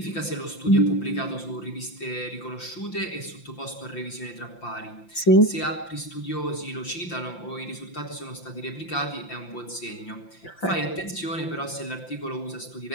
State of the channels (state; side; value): late; right; 5.8 ms